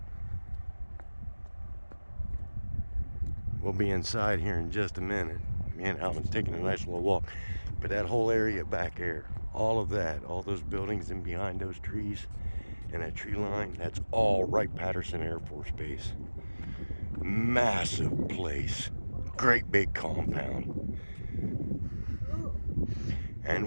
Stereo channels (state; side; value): inverted; both; correlation -1.00